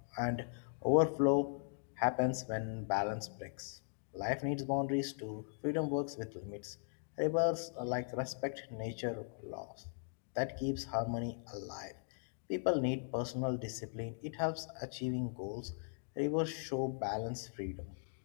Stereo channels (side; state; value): right; silent; digital silence